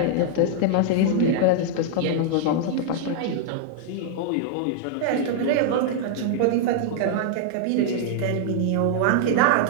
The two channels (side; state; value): both; different; correlation -0.01